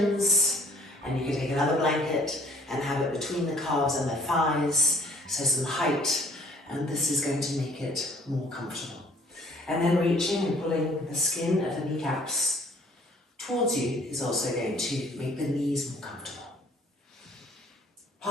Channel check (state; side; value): normal; both; correlation 0.57